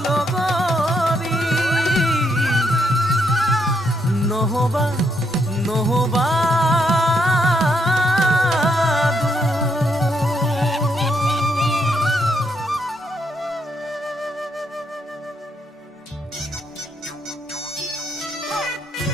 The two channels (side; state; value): both; normal; correlation 0.76